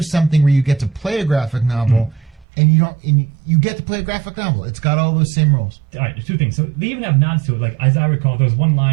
something where you get to play a graphic novel, and you get to play a graphic novel. It's got all those same rules. All right, there's two things. So they even have nods to it. Like, as I recall, there was one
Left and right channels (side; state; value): left; drops out; at 2.5 s